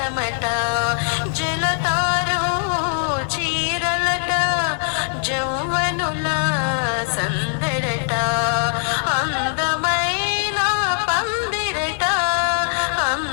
జలతారు చీరలట జౌవనుల సందడట అందమైన పందిరట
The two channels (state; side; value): silent; right; digital silence